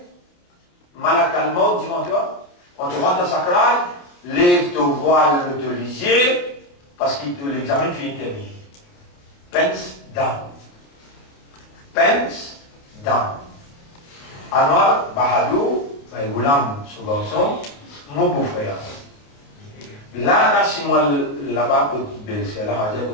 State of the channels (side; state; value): right; late; 28 ms